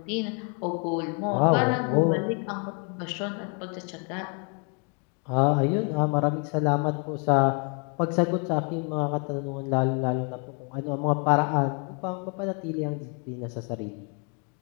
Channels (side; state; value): right; quieter; 37.8 dB